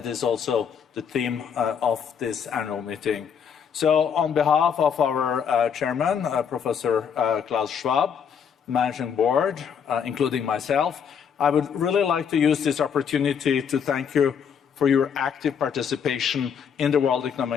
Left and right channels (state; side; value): quieter; right; 7.3 dB